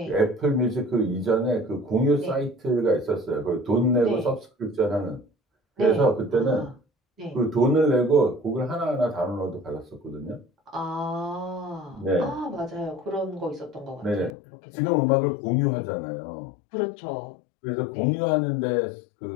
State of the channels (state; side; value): drops out; right; at 14.4 s